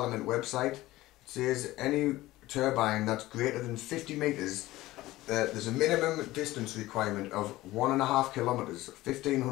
website, it says any turbine that's greater than 50 metres, there's a minimum distance requirement of 1.5 kilometres,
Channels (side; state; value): right; quieter; 17.4 dB